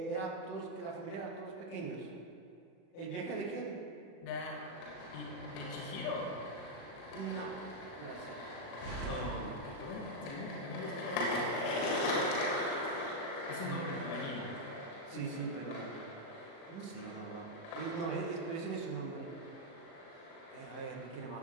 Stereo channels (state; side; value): late; right; 37 ms